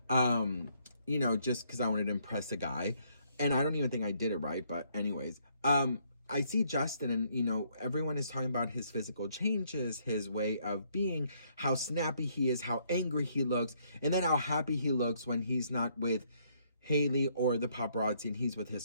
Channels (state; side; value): inverted; both; correlation -0.69